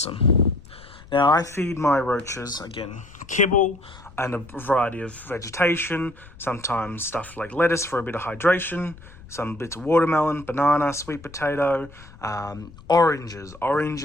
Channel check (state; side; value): noise; left; rumble, 20 dB below the sound